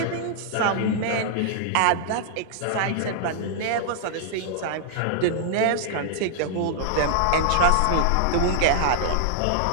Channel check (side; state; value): both; different; correlation -0.01